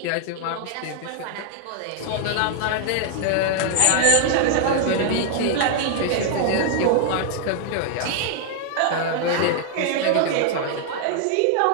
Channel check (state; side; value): different; both; correlation 0.00